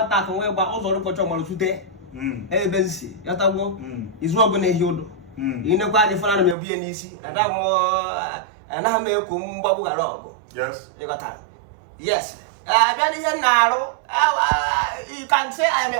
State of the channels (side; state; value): left; drops out; at 6.6 s